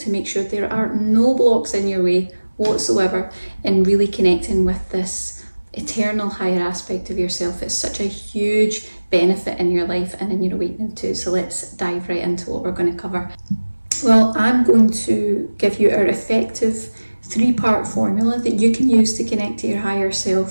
make sure there are no blocks in your way whatsoever in really connecting with this eternal higher aspect of yourself. It's such a huge benefit in your life and in your awakening too. So let's dive right into what we're going to cover. Well, I'm going to give you our effective 3-part formula that you can use to connect to your higher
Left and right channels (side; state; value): both; inverted; correlation -1.00